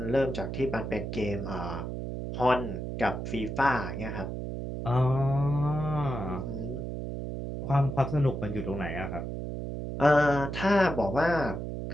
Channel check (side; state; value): right; noise; hum, 5 dB below the sound